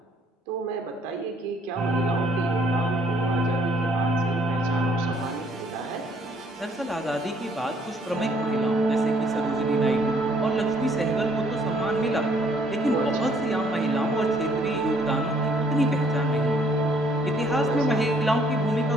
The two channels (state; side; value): normal; both; correlation 0.64